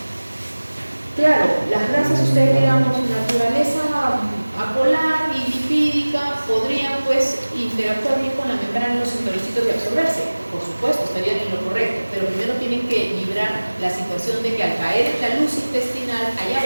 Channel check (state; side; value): inverted; both; correlation -1.00